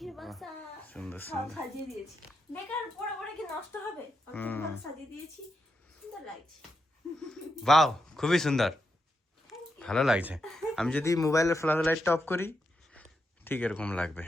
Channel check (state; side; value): normal; both; correlation 0.85